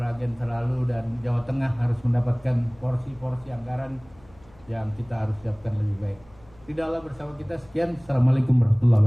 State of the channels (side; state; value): left; noise; hum, 27 dB below the sound